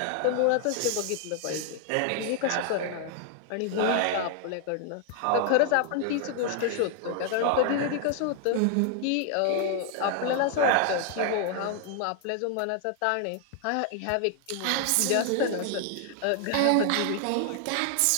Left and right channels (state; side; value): different; both; correlation 0.00